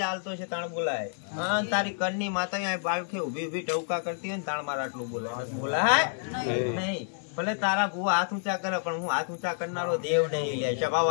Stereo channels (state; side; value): silent; right; 58 dB below the other